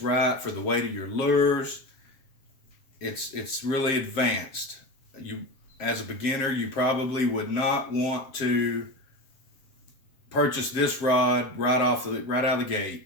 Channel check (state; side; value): late; right; 7.4 ms